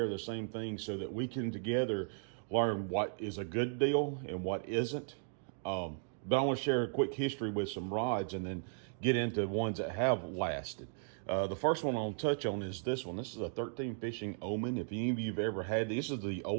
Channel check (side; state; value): left; silent; digital silence